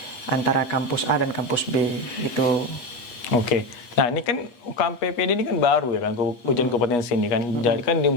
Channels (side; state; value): right; late; 8.3 ms